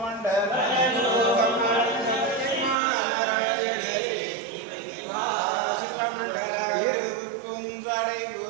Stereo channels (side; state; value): left; drops out; at 2.8 s